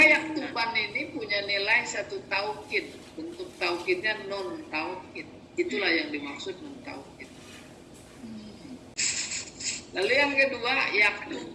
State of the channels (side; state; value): both; identical; correlation 1.00